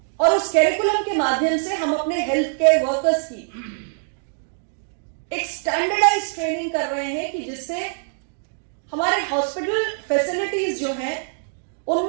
और उस कैरिकुलम के माध्यम से हम अपने हेल्थ केयर वर्कर्स की एक स्टैंडर्डाइज ट्रेनिंग कर रहे हैं कि जिससे हमारे हॉस्पिटल फैसिलिटीज जो हैं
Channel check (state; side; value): silent; left; 63 dB below the other